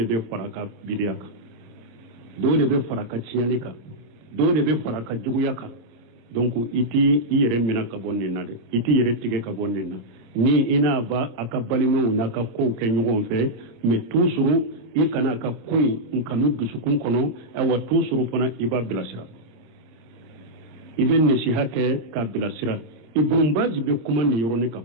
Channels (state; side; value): late; left; 26 ms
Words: bɛ fara ka bidiya kan dɔw de bɛ fara ka tiɲɛli kan dɔw de bɛ fara ka juguya kan donc i t'i yɛrɛ minɛ ka bɔ nin na dɛ i t'i yɛrɛ tigɛ ka bɔ nin na ni i n'a ba a ka balimaw n'a ka kow kɛ ɲɔgɔn fɛ mais toujours i kana a ka ko in kanu dusukun kɔnɔ wa toujours fana i b'a bilasira i bɛ nasiha kɛ k'a bilasira Ibn Baz bɛ kuma nin yɔrɔnin kan